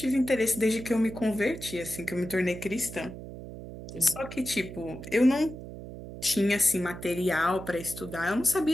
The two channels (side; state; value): right; noise; hum, 12 dB below the sound